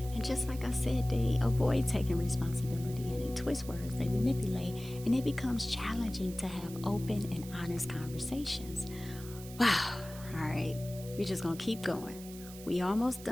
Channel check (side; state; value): right; noise; hiss, 16 dB below the sound